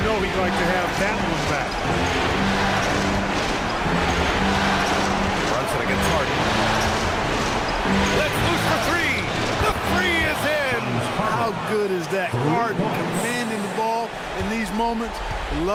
he'd like to have that one back. Brunson against Harden. Let's loose for 3. The 3 is in. How good is that? Harden commanding the ball in these moments.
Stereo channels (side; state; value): both; identical; correlation 1.00